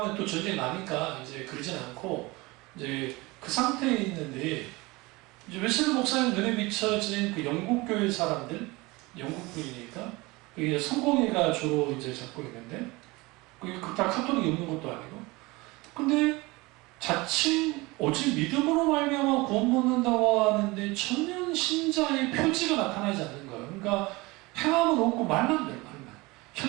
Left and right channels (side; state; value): left; quieter; 23.0 dB